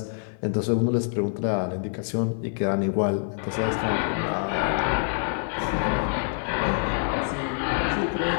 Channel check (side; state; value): right; silent; 61 dB below the other